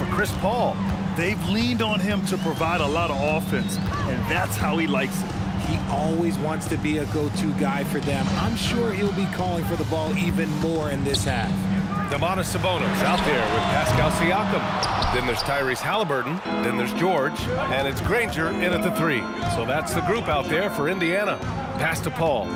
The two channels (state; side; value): identical; both; correlation 1.00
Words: Chris Paul. They've leaned on him to provide a lot of offense, and that's how he likes it. He always wants to be a go-to guy for them. I'm sure he'll be calling for the ball even more in this half. Domantas Sabonis out there with Pascal Siakam. Then there's Tyrese Halliburton. Then there's George. And it's Granger in at the 3. So that's the group out there for Indiana. Pass to Paul.